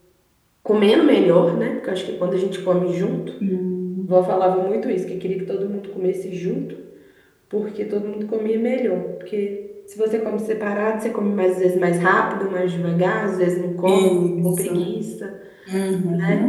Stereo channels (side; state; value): both; identical; correlation 1.00